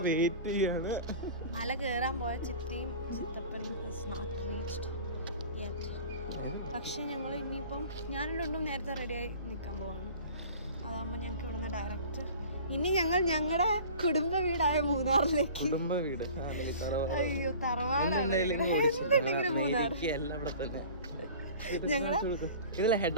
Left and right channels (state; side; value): inverted; both; correlation -0.43